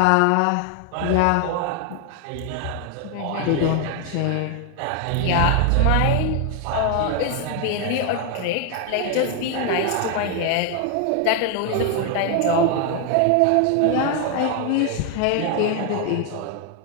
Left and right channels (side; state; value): both; different; correlation 0.00